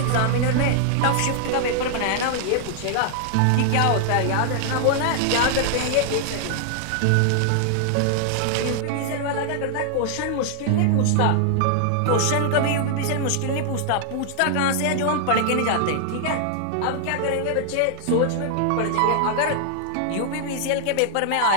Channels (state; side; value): different; both; correlation 0.00